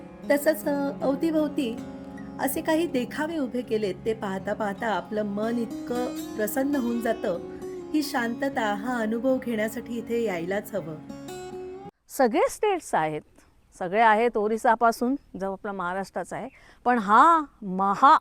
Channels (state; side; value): identical; both; correlation 1.00